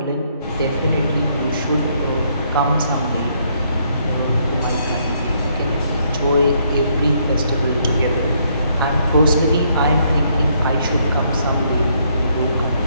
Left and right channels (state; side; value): inverted; both; correlation -0.71